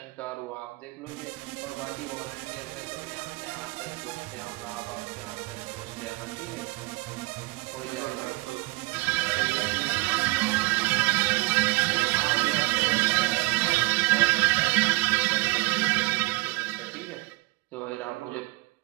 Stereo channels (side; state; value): left; quieter; 22.3 dB